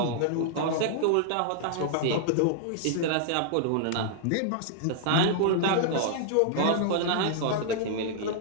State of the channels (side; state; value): both; different; correlation -0.01